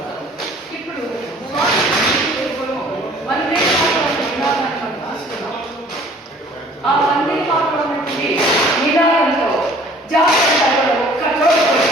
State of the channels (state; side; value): normal; both; correlation 0.53